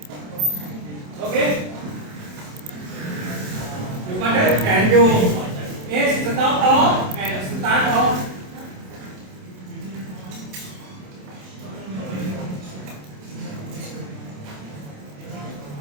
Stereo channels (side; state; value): left; late; 27 ms